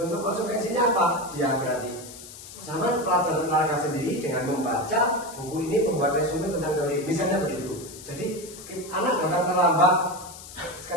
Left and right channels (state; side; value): noise; left; hiss, 15 dB below the sound